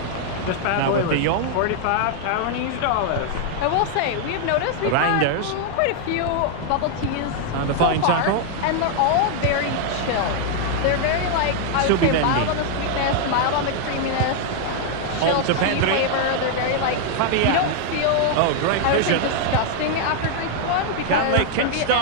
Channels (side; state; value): both; different; correlation 0.00